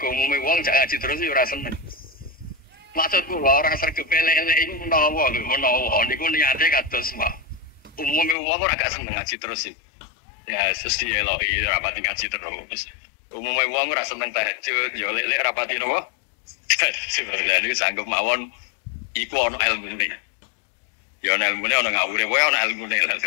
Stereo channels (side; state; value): right; drops out; at 8.3 s